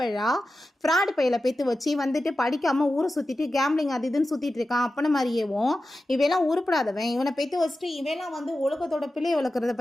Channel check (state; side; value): normal; both; correlation 0.93